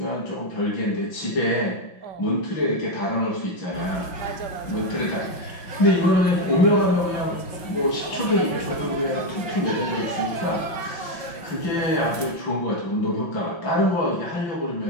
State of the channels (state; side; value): late; right; 5.8 ms